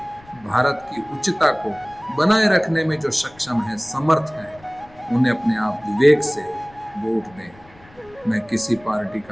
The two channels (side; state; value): left; noise; rumble, 26 dB below the sound